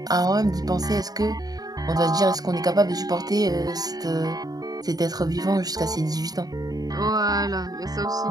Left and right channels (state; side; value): late; left; 0.18 ms